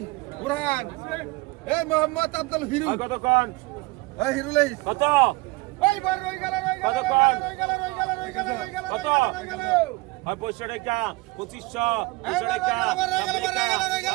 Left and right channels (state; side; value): quieter; left; 23.4 dB